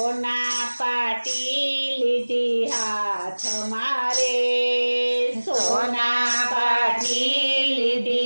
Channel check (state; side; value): inverted; both; correlation -1.00